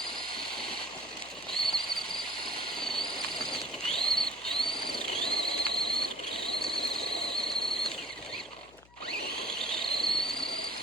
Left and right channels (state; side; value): noise; left; hum, 26 dB below the sound